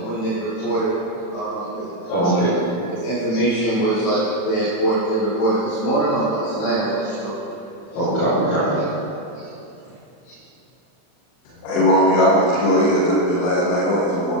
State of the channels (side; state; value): right; late; 40 ms